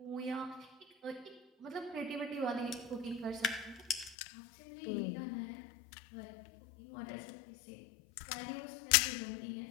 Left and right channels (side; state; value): right; drops out; at 4.2 s